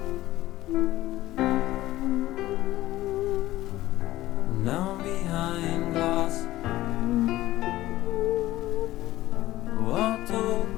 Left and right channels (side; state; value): right; quieter; 16.0 dB